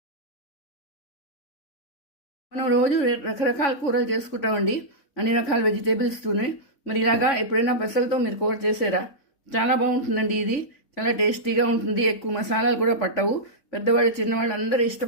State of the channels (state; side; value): late; right; 3.6 ms